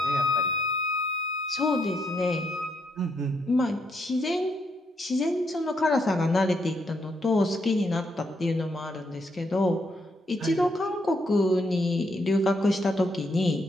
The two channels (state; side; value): normal; both; correlation 0.76